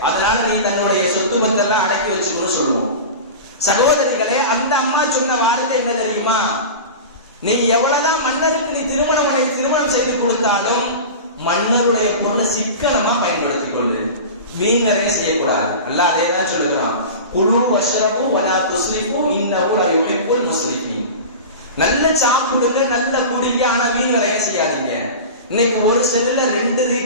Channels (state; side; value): inverted; both; correlation -0.30